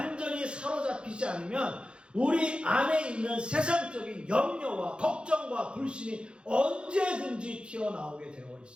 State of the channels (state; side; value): late; left; 0.055 ms